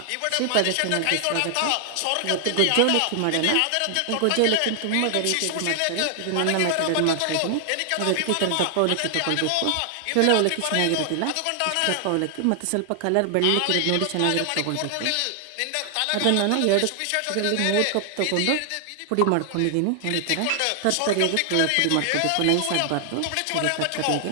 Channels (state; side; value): different; both; correlation 0.00